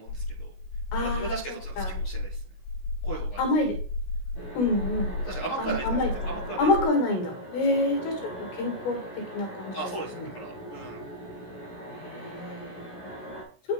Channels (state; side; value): late; right; 16 ms